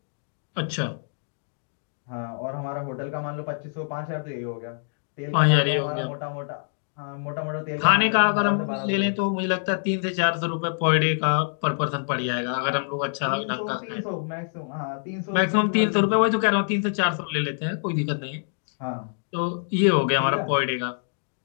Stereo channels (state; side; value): silent; right; digital silence